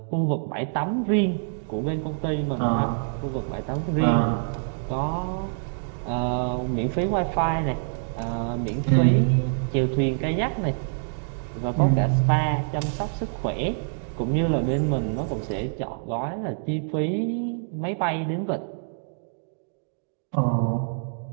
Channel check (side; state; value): left; silent; digital silence